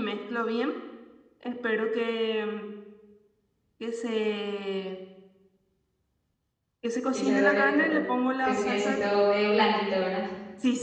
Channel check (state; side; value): identical; both; correlation 1.00